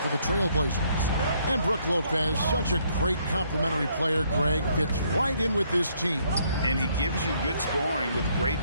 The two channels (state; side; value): inverted; both; correlation -0.68